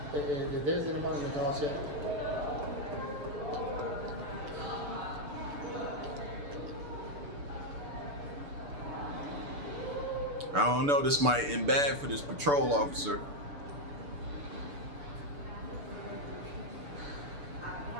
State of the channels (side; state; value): left; late; 6.9 ms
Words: If there's anybody in the car chat, I don't know. This might end bad for this patrol officer.